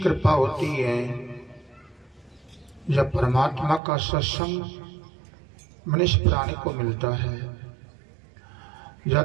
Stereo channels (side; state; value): left; drops out; at 3.8 s